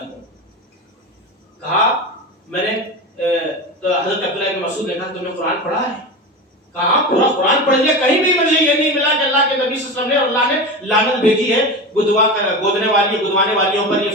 کہا میں نے، تو حضرت عبداللہ بن مسعود نے کہا تم نے قرآن پڑھا ہے؟ کہا پورا قرآن پڑھ لیا، کہیں بھی مجھے یہ نہیں ملا کہ اللہ کے نبی صلی اللہ علیہ وسلم نے اور اللہ نے لعنت بھیجی ہے گودنے والی، گدوانے والیوں پر، یہ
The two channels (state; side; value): normal; both; correlation 0.25